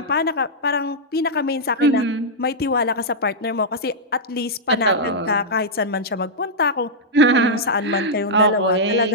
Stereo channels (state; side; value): normal; both; correlation -0.08